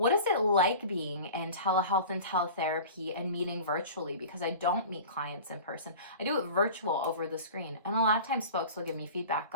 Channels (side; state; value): both; inverted; correlation -0.38